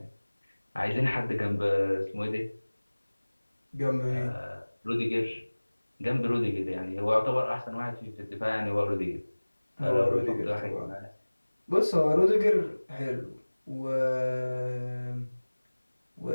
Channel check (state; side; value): inverted; both; correlation -1.00